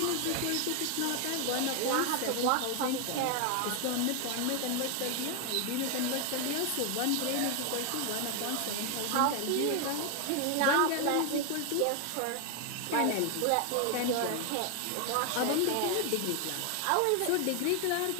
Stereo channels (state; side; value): different; both; correlation 0.01